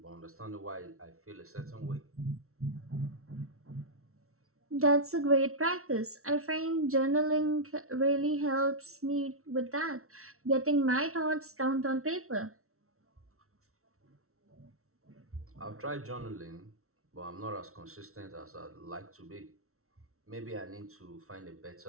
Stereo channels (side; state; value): left; late; 0.63 ms